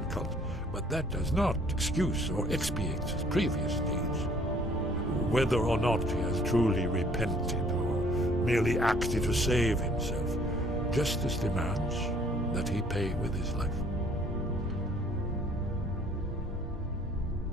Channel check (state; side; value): normal; both; correlation 0.58